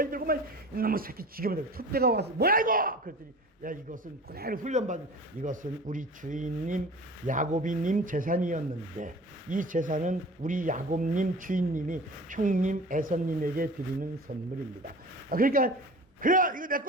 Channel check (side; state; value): both; normal; correlation 0.40